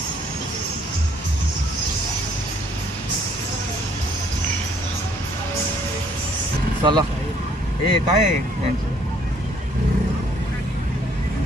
चला, हे काय आहे,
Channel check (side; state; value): both; normal; correlation 0.64